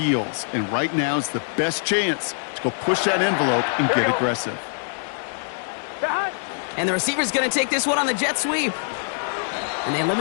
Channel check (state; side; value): silent; right; digital silence